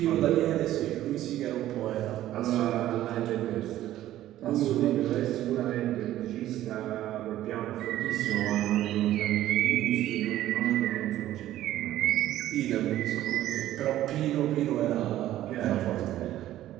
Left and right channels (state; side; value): quieter; left; 13.6 dB